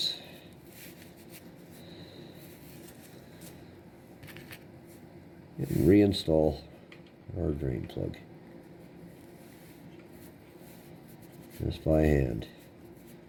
And reinstall our drain plug. Just by hand.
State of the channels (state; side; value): identical; both; correlation 1.00